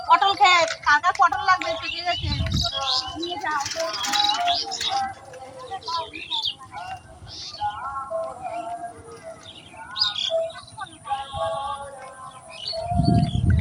পটল ক্ষেত, কার কার পটল লাগবে পেকে গেছে নিয়ে যাও।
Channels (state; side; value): identical; both; correlation 1.00